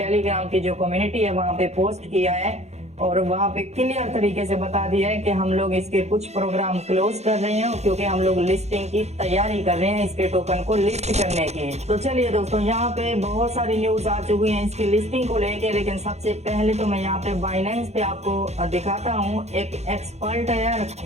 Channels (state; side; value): late; left; 0.32 ms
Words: की जो कम्युनिटी है वहां पे पोस्ट किया है और वहां पे क्लियर तरीके से बता दिया है कि हम लोग इसके कुछ प्रोग्राम क्लोज कर रहे हैं क्योंकि हम लोग लिस्टिंग की तैयारी कर रहे हैं इसके टोकन को लिस्ट करने की। तो चलिए दोस्तों यहाँ पे बहुत सारी न्यूज आ चुकी हैं इसकी लिस्टिंग को लेके, लेकिन सबसे पहले तो मैं यहाँ पे बाइनेंस पे आपको दिखाता हूँ। एक एक्सपर्ट है